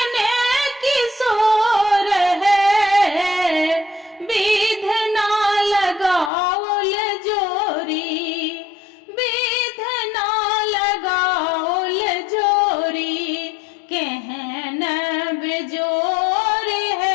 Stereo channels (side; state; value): right; drops out; at 6.3 s